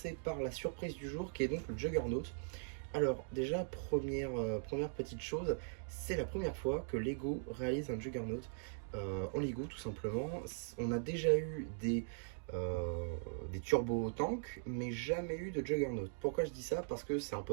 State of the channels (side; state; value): left; silent; digital silence